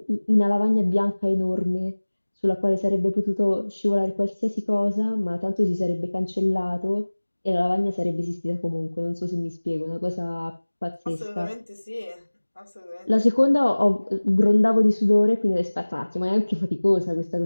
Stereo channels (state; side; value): inverted; both; correlation -1.00